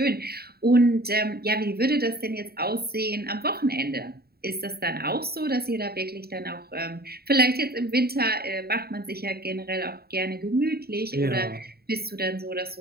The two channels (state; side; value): late; left; 0.45 ms